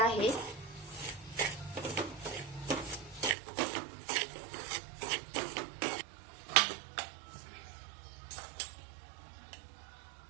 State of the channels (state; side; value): drops out; left; at 3.4 s